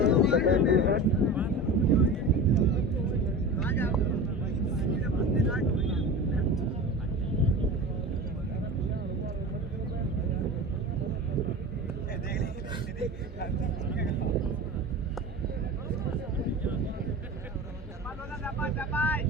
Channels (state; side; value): normal; both; correlation 0.32